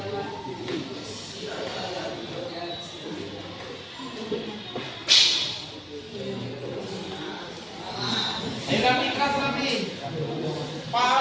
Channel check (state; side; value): identical; both; correlation 1.00